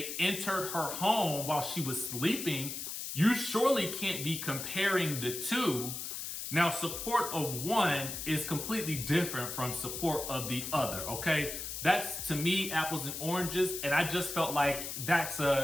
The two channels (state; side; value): noise; left; hiss, 6 dB below the sound